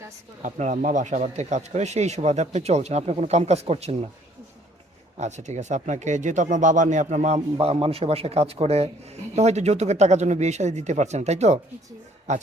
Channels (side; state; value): both; normal; correlation 0.61